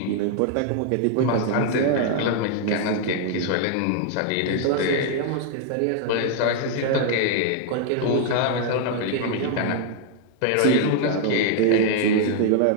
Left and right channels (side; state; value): both; different; correlation 0.00